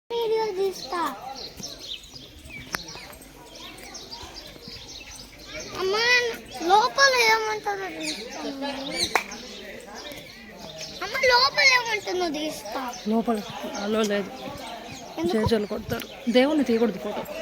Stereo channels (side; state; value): both; identical; correlation 1.00